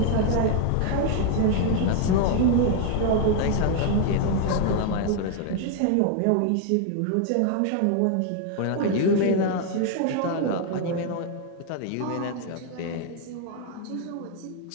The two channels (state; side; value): different; both; correlation 0.00